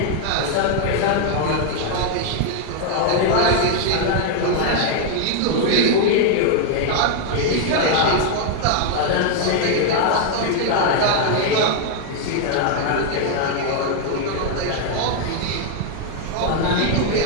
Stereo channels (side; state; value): both; different; correlation 0.00